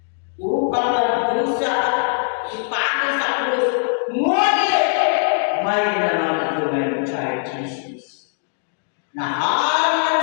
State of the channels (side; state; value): right; silent; digital silence